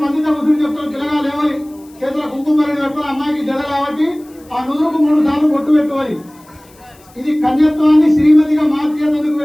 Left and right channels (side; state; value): left; noise; hiss, 28 dB below the sound